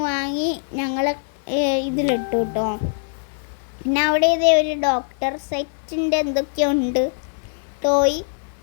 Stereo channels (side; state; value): right; silent; 60 dB below the other